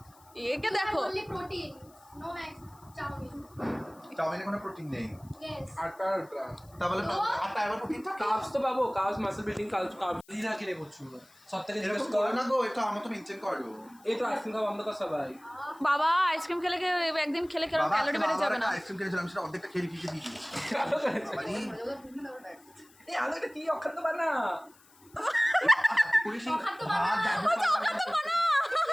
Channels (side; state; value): left; noise; hiss, 28 dB below the sound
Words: একে দেখো only protein no max chowmein চাউমিনে কোনো প্রোটিন নেই ইয়েস 8 টাকা তাহলে আটা এবার প্রোটিন থাকে কার্বস তো পাবো কার্বস মাসল বিল্ডিং কার্বস দিনা কিনে করছো সব থেকে জিজ্ঞেস এরকম কর করো না গো এটা আমার তো মেনটেন করো এই তো আইসক্রিম খাওয়া বন্ধ কর সবাই বাবা আইসক্রিম খেলে একদিন খেলে কেরম ক্যালোরি বেড়ে যাবে না আইসক্রিম খেয়েছিলাম সেটা অর্ধেকটা খেয়ে ফিকে দিয়ে দিয়েছি ভালো করেছে। মানে এই আলো এটা কি অখাদ্য বানা পুলিশ ভাত